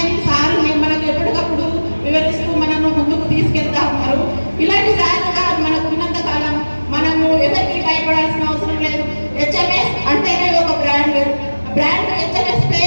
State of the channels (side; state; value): both; inverted; correlation -1.00